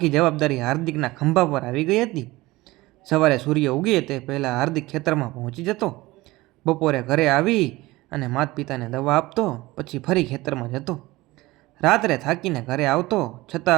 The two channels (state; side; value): quieter; left; 19.7 dB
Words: જવાબદારી હાર્દિકના ખંભા પર આવી ગઈ હતી. સવારે સૂર્ય ઉગે તે પહેલાં હાર્દિક ખેતરમાં પહોંચી જતો, બપોરે ઘરે આવી અને માતા પિતાને દવા આપતો, પછી ફરી ખેતરમાં જતો. રાત્રે થાકીને ઘરે આવતો,